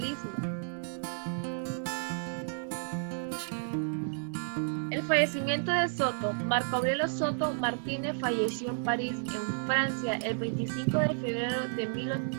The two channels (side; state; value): left; silent; digital silence